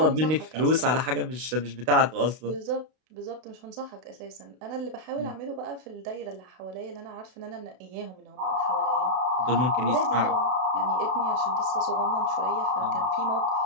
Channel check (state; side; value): late; left; 32 ms